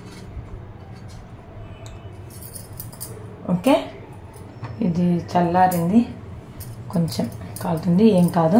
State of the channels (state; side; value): identical; both; correlation 1.00